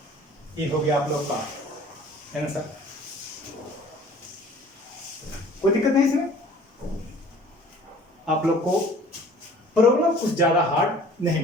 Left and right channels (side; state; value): both; normal; correlation 0.50